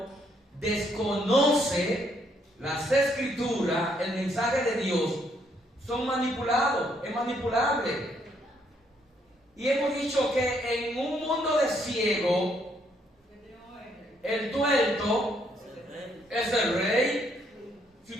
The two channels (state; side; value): normal; both; correlation 0.71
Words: desconoce las escrituras, el mensaje de Dios, son manipulados, es manipulable. Y hemos dicho que en un mundo de ciego, el tuerto es el rey. Si